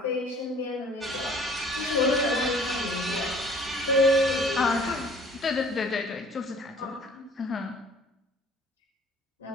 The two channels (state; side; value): normal; both; correlation 0.52